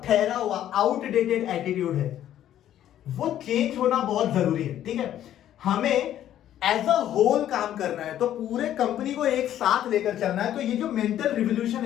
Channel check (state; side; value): quieter; right; 11.6 dB